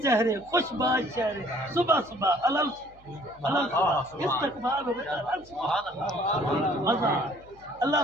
چہرے خوش باز چہرے صبح صبح علل استقبال ہو مزہ اللہ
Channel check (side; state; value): left; noise; hum, 26 dB below the sound